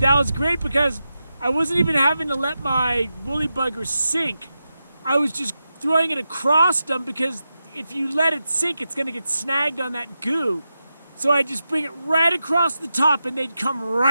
was great because I wasn't even having to let my woolly bugger sink. I was just throwing it across them because if you let it sink, it's gonna get snagged on that goo. So I just bring it right across the top and they'd come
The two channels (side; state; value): both; inverted; correlation -0.90